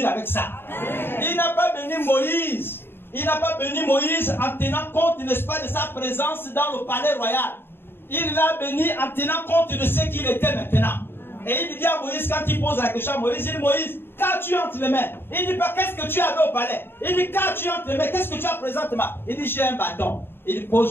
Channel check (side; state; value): right; late; 0.11 ms